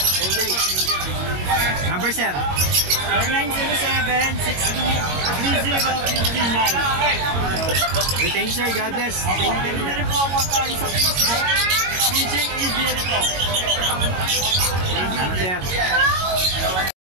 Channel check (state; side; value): late; left; 22 ms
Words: Okay. Number sir 0907-62-30-59. thank you sir, God bless. Thank you. Pwede na rin po ako sa Facebook. PJ Adrian ito. Salamat sir.